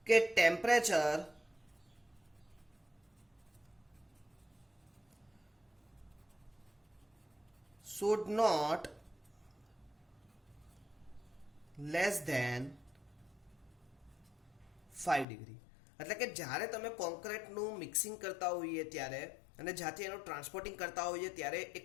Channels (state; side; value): drops out; right; at 15.2 s